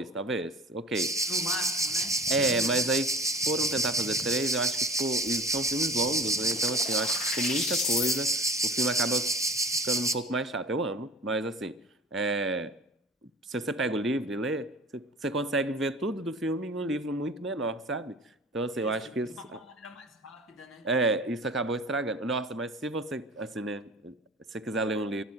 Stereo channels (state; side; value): normal; both; correlation 0.41